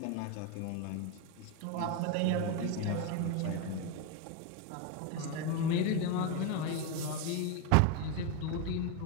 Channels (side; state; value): both; different; correlation 0.02